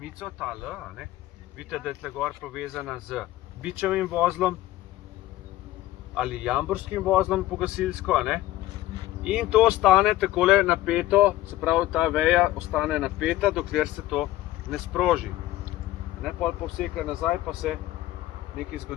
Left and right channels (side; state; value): right; quieter; 15.7 dB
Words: ta L, a ne? Vidite, da je tle gor povezana z bičevim vozlom. ali jamborskim vozlom po gasilsko, a ne? In to ostane takole napeto, se pravi, ta veja ostane napeta, dokler se to ne sproži. Ne, pol povseka nazaj, pa se nekaj